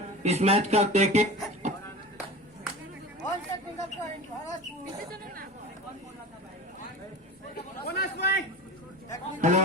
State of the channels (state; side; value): normal; both; correlation 0.32